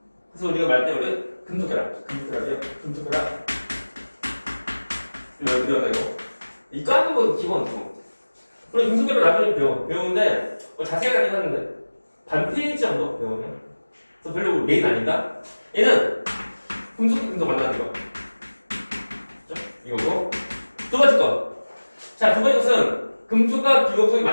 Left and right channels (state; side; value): inverted; both; correlation -1.00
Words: 그래서 우리가 말할 때 우리 금속결합이요. 금속결합. 이거. 이 까는 거 기본. 우리 금속결합 나중에 배우는데 뭐 자세히 하긴 하는데 반 페이지 정도 배우면. 그래서 별로 메인 아닌가? 얘는 금속 만나는 거. 그죠? 이거고. 두 번째 거. 자, 두 번째 것은 금속과 비금속의